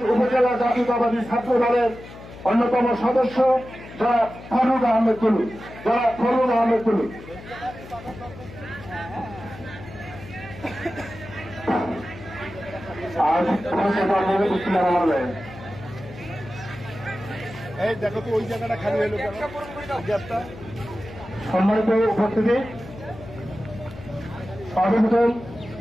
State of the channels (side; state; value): left; noise; hum, 16 dB below the sound